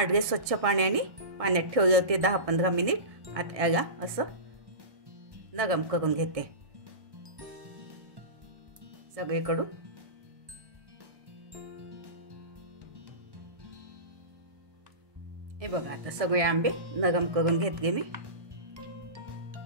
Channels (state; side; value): late; left; 1.6 ms